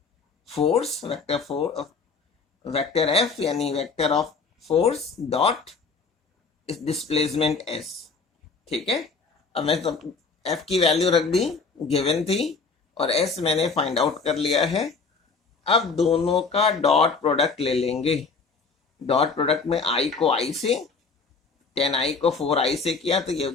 force vector F यानी vector of force dot displacement S. ठीक है, अब मैं तो एफ की वैल्यू रख दी, गिवन थी, और एस मैंने फाइंड आउट कर लिया है। अब दोनों का डॉट प्रोडक्ट ले लेंगे। डॉट प्रोडक्ट में i को i से, 10i को 4i से किया तो ये हो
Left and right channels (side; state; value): right; quieter; 4.6 dB